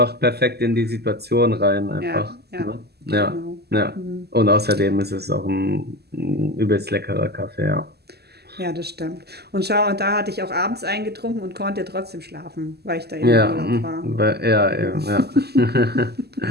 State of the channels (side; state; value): left; late; 0.47 ms